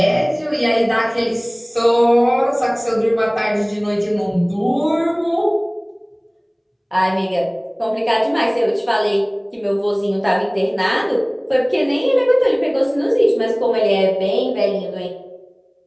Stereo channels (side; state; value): both; identical; correlation 1.00